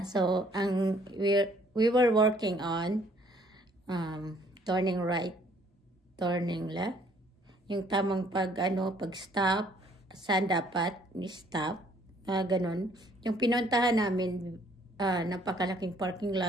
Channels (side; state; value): both; normal; correlation 0.62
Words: So, we were working on turning right, turning left. Yung tamang pag-stop, saan dapat ni-stop, ganun. Yung pinuntahan namin, napakalaking parking